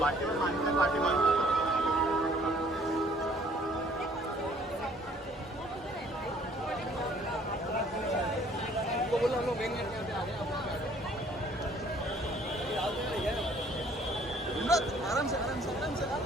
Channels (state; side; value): normal; both; correlation 0.58